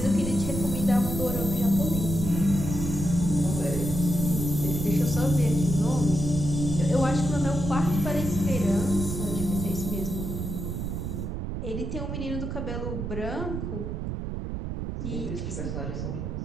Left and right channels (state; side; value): noise; right; rumble, 4 dB below the sound